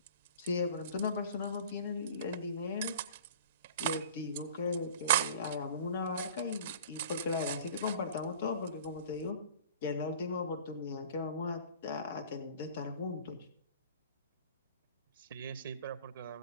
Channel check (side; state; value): both; inverted; correlation -0.42